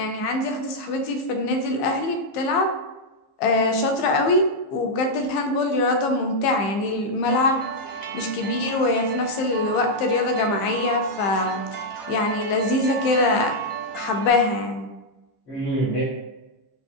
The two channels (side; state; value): right; late; 15 ms